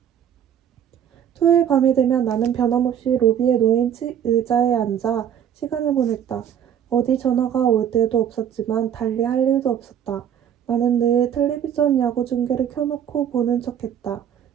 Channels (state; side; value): quieter; left; 9.2 dB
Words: 토요일 밤이 되면 나는 변함없이 로비에 놓인 의자에 앉아 시간을 보냈다. 어디 전화가 올 때도 없었지만 달리 할 일도 없었다. 나는 늘 텔레비전 야구 중계를 켜놓고 보는 척했다.